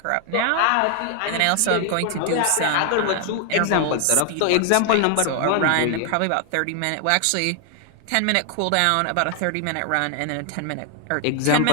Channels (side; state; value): both; different; correlation 0.00